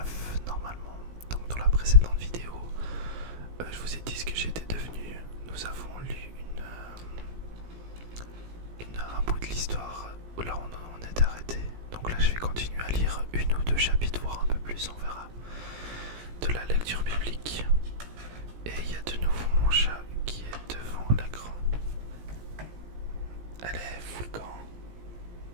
normalement. Donc dans la précédente vidéo, je vous ai dit ce que j'étais devenu. Nous avons lu un bout de l'histoire où là on est arrêté. Donc là je vais continuer à lire une ou deux chapitres, voire un peu plus, on verra, de la lecture biblique. Et il y a de nouveau mon chat qui est devant l'écran. Allez, fous le camp.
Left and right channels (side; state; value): left; late; 17 ms